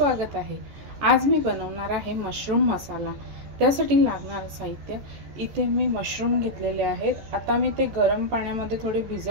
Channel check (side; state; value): left; late; 14 ms